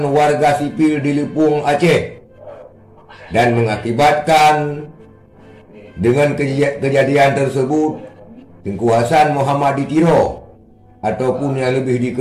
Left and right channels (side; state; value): both; identical; correlation 1.00